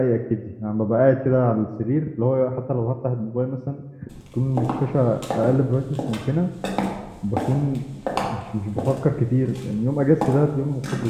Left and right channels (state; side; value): identical; both; correlation 1.00